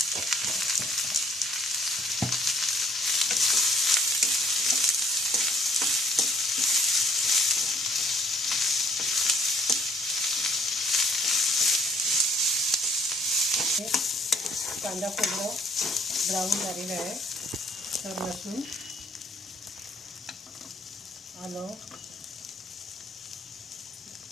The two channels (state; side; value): normal; both; correlation 0.62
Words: कांदा खोबरं ब्राऊन झालेलं आहे. तर लसूण, आलं